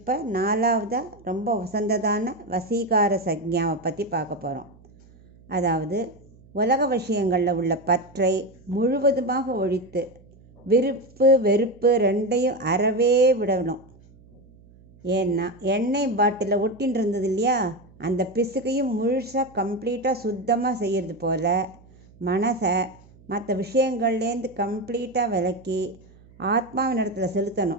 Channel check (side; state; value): right; noise; hum, 26 dB below the sound